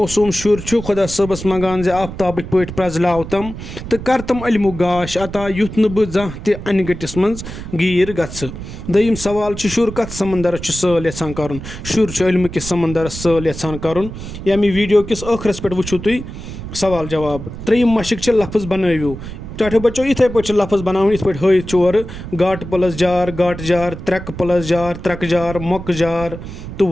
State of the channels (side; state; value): right; noise; rumble, 10 dB below the sound